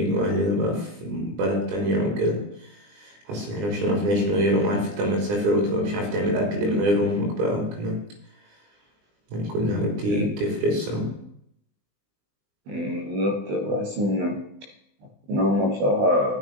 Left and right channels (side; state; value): left; late; 20 ms